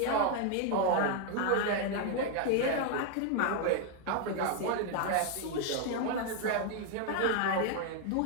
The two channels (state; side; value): different; both; correlation 0.00